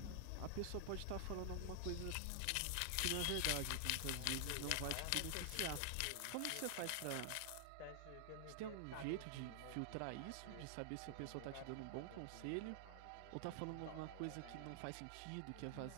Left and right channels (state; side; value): different; both; correlation 0.00